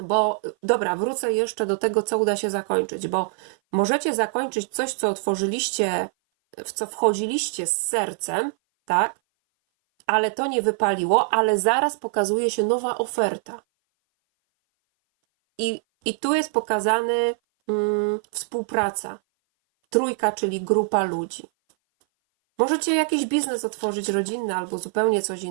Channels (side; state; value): left; silent; 57 dB below the other